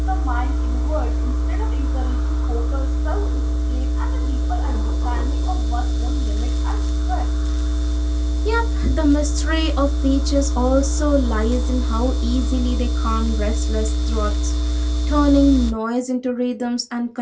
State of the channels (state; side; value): identical; both; correlation 1.00